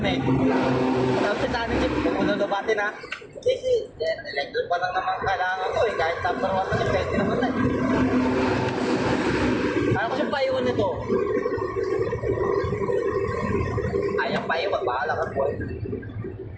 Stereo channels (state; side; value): identical; both; correlation 1.00